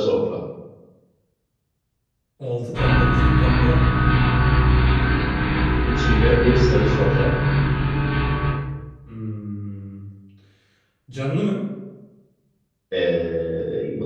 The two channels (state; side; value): identical; both; correlation 1.00